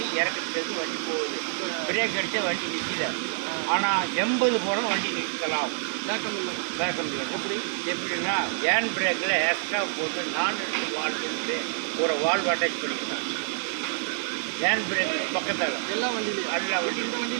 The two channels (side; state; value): left; silent; digital silence